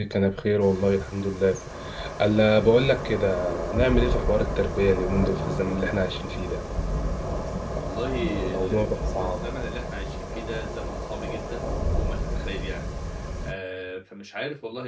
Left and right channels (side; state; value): both; identical; correlation 1.00